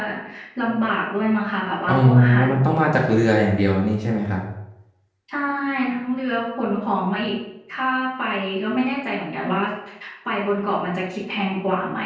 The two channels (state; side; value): identical; both; correlation 1.00